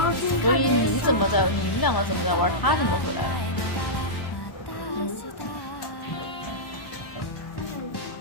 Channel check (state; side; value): late; right; 1.1 ms